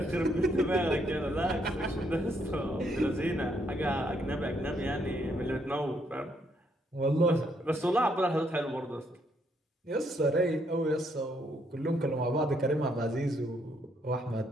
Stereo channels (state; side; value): normal; both; correlation 0.73